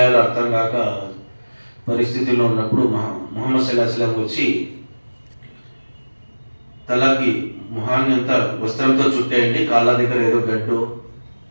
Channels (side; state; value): both; inverted; correlation -1.00